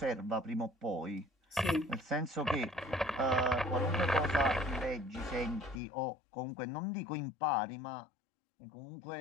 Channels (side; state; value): right; drops out; at 5.8 s